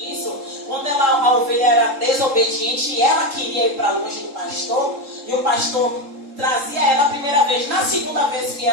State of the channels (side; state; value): left; late; 3.7 ms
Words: quando a ovelha era desobediente e ela queria ir para longe do pastor, e o pastor trazia ela a primeira vez, na segunda vez que